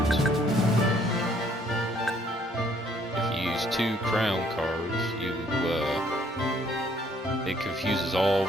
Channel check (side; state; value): both; normal; correlation 0.64